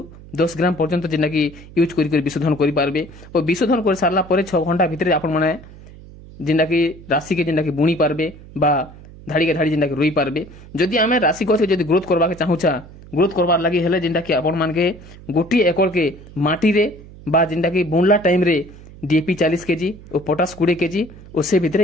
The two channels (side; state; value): right; noise; hum, 19 dB below the sound